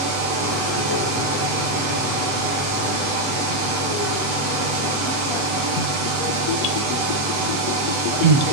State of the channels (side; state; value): left; late; 8.0 ms